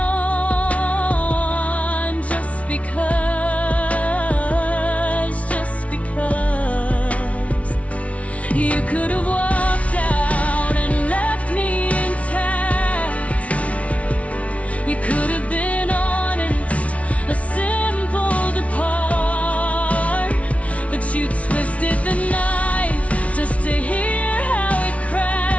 Just because you could have walked out and left me intact. You could have been honest, a simple depart, but you twisted the knife just to hear how it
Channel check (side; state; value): right; late; 0.065 ms